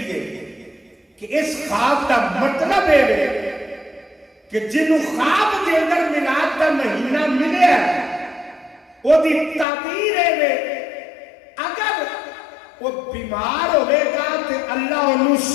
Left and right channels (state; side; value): drops out; right; at 9.7 s